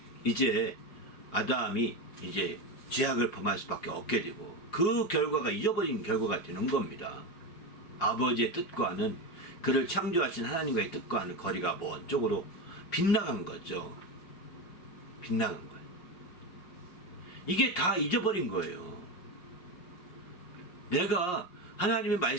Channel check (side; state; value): right; late; 5.5 ms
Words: 이제 아담이 이제 죄악을 범할 수밖에 없게 되고 그 결과가 잊어버린 결과가 되는 겁니다. 아버지의 뜻과는 그를 창조하신 하나님과의 뜻과는 거리가 먼 쪽으로 빗나간 거죠. 빗나간 거예요. 이게 다 잊어버린 거예요. 내가 하나님의